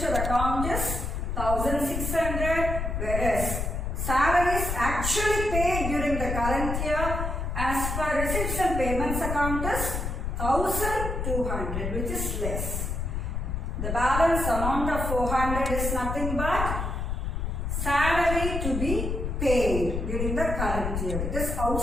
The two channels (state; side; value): noise; left; rumble, 2 dB below the sound